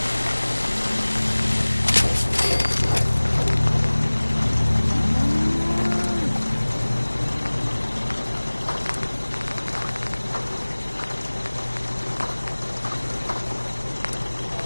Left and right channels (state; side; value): inverted; both; correlation -1.00